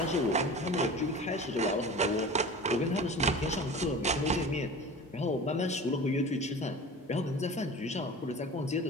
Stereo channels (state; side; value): normal; both; correlation 0.37